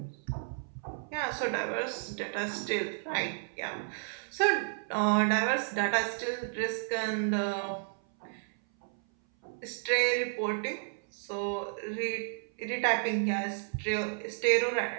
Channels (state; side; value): silent; left; 56 dB below the other